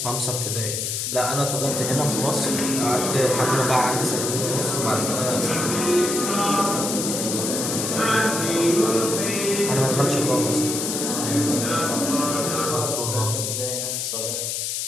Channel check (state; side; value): noise; left; hiss, 2 dB below the sound